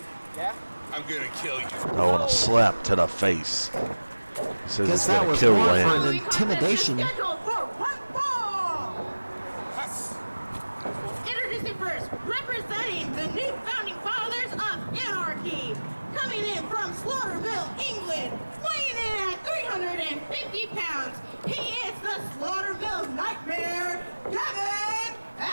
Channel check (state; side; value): inverted; both; correlation -1.00